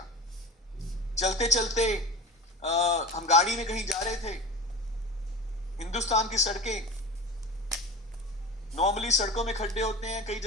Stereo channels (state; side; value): normal; both; correlation 0.31